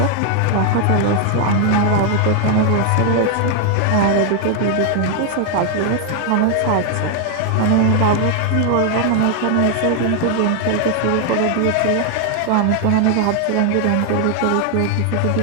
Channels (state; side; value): different; both; correlation 0.00